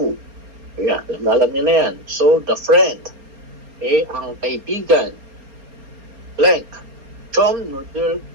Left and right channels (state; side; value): late; left; 4.3 ms